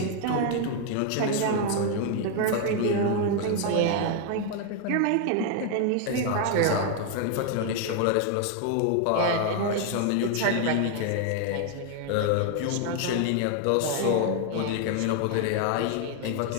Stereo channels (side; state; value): both; different; correlation 0.00